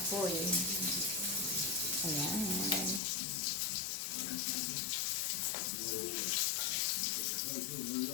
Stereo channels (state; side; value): drops out; right; at 3.0 s